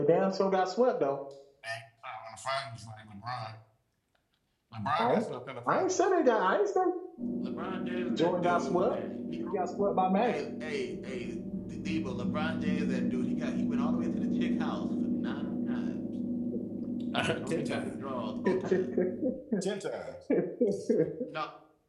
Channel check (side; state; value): both; identical; correlation 1.00